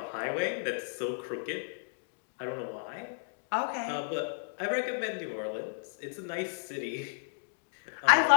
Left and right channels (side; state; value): right; silent; digital silence